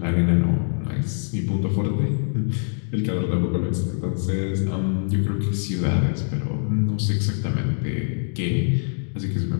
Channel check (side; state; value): right; silent; 63 dB below the other